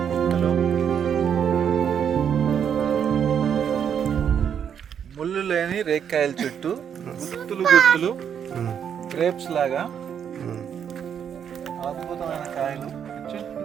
ముళ్ళు లేని రేక్కాయల చుట్టూ గుత్తులు గుత్తులు గ్రేప్స్ లాగా అద్భుతమైన కాయలు.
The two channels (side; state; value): left; quieter; 8.2 dB